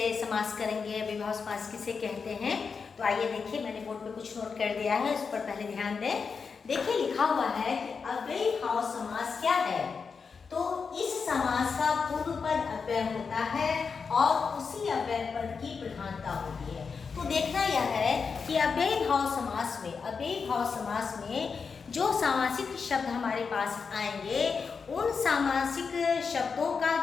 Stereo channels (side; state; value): right; quieter; 5.4 dB